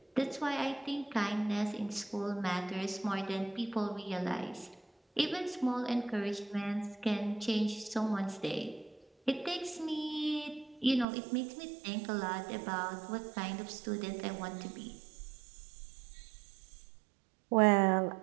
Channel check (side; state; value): left; drops out; at 11.1 s